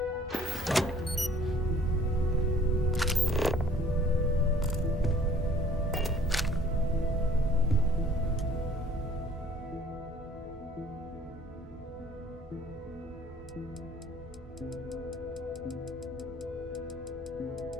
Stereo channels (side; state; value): both; normal; correlation 0.56